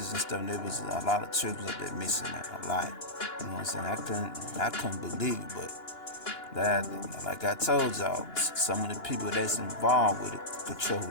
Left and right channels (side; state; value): right; late; 2.9 ms